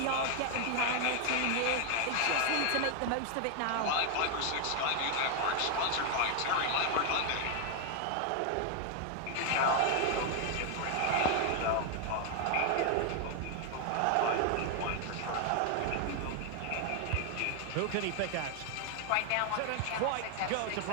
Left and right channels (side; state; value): both; different; correlation 0.00